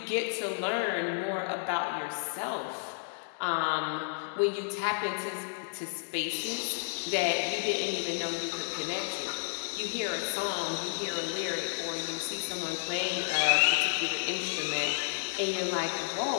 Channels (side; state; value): right; silent; digital silence